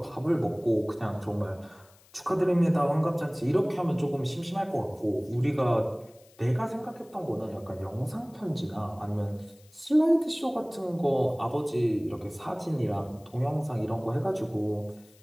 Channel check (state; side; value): noise; left; hiss, 28 dB below the sound